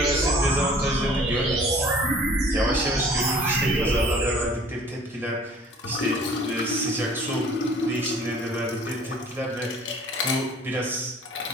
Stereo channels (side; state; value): both; normal; correlation 0.51